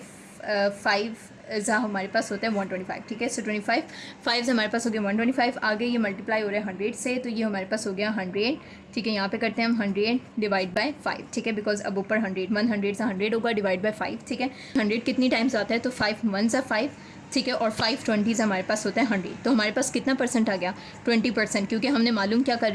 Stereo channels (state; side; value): identical; both; correlation 1.00